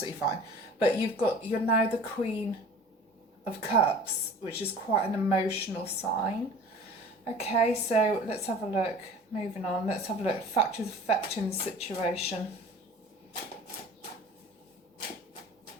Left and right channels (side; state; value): both; normal; correlation 0.43